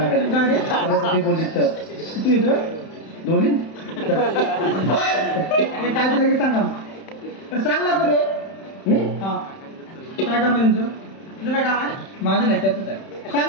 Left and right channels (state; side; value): late; right; 31 ms